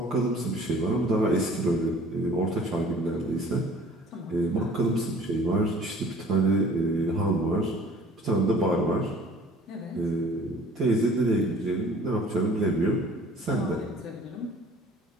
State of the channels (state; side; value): normal; both; correlation 0.50